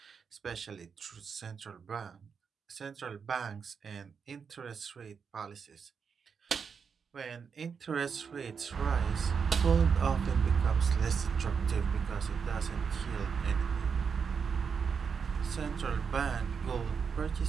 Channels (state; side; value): quieter; left; 6.2 dB